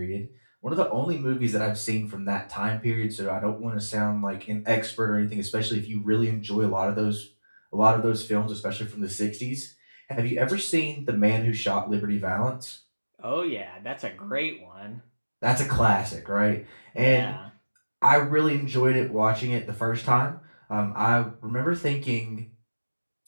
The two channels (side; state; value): both; inverted; correlation -1.00